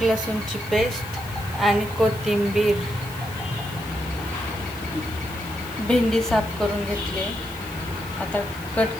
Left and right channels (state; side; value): noise; left; hiss, 18 dB below the sound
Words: लसूणची पेस्ट आणि कोथिंबीर। भेंडी साफ करून घेतली, आता